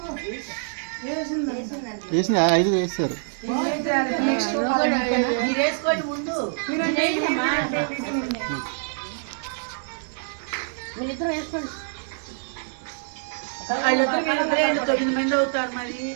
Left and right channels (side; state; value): left; silent; digital silence